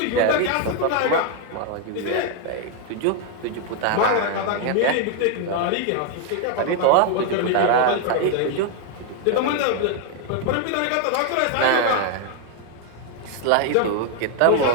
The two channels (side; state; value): both; different; correlation 0.01